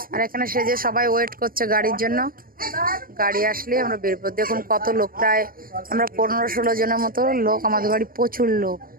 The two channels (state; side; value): late; left; 0.42 ms